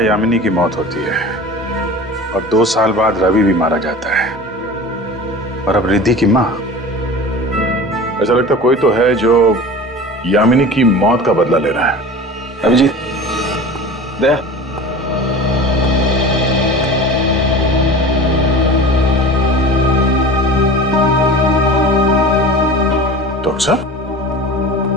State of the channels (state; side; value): normal; both; correlation 0.36